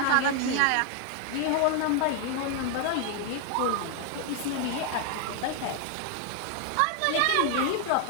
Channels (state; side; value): different; both; correlation 0.00